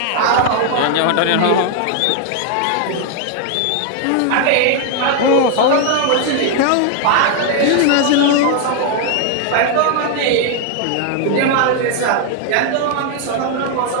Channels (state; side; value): different; both; correlation 0.00